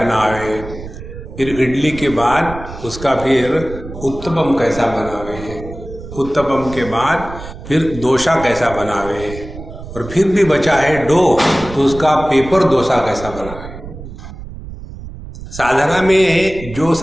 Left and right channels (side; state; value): right; noise; rumble, 13 dB below the sound